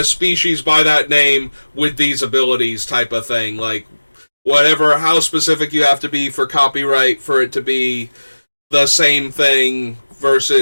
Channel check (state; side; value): inverted; both; correlation -1.00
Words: species by that name with these abilities type of thing. Like, whatever, how specific you have to be for copyright for it to be the same thing